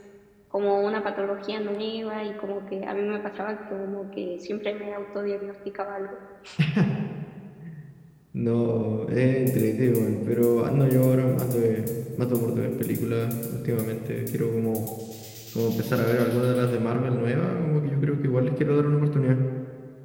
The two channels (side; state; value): both; identical; correlation 1.00